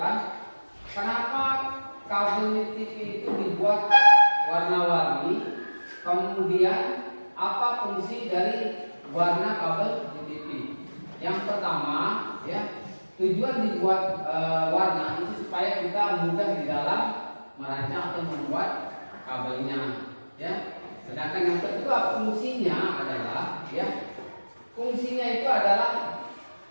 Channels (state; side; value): inverted; both; correlation -1.00